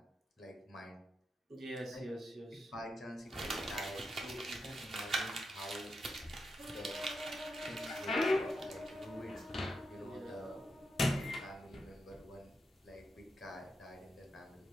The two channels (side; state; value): both; normal; correlation 0.85